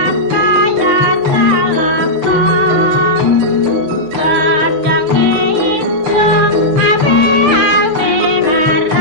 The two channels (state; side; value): late; left; 6.7 ms